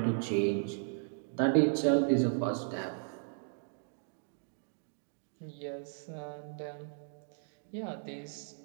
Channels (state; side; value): silent; left; digital silence